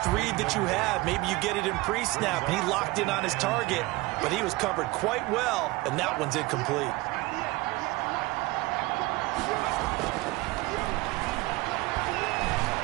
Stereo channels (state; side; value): quieter; left; 21.7 dB